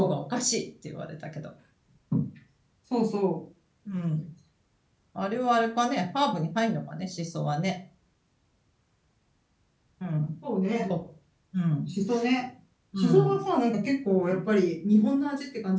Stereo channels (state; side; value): identical; both; correlation 1.00